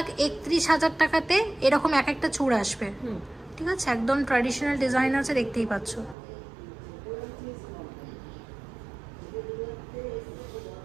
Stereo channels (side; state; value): left; drops out; at 6.2 s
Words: টাকাতে এরকম এক একটা চূড় আসবে। ঠিক আছে, একদম ট্র্যাডিশনাল ডিজাইন আছে, দেখতেই পাচ্ছ।